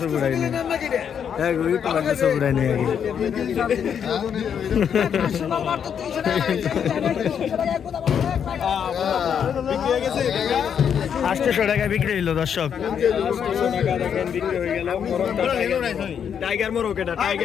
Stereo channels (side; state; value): right; quieter; 7.9 dB